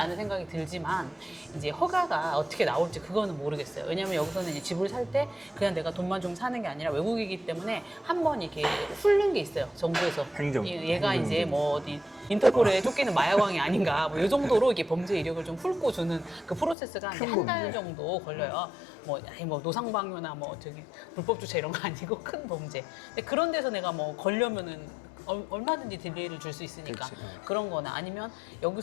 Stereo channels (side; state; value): right; drops out; at 16.8 s